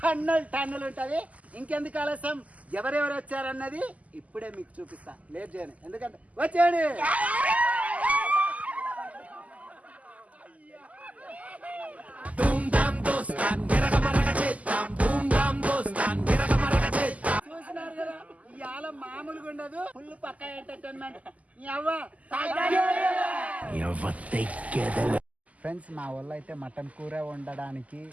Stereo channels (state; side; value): late; left; 0.072 ms